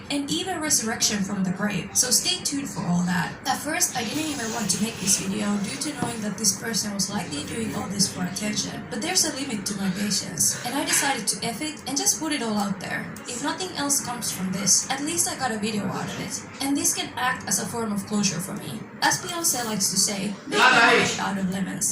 and even resurrection from the grave, so stay tuned for all that. At first, I didn't even want to make this video due to knowing that this person was likely doing all this for attention, but there's a limit to my patience, and I decided to F it and just put it all out there. If nothing else comes from this, at least I got a video out of it. And this can act as a form of closure for me. As Beyonce likes to say, make lemonade out of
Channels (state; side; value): identical; both; correlation 1.00